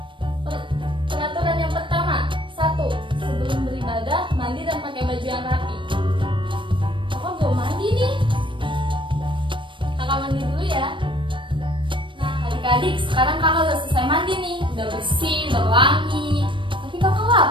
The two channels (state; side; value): late; left; 0.24 ms